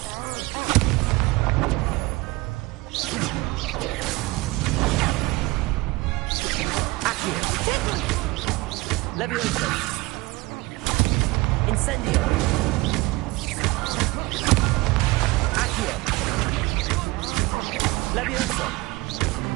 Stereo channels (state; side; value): quieter; left; 22.1 dB